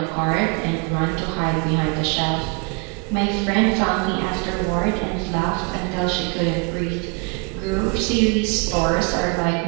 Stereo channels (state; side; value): quieter; left; 32.0 dB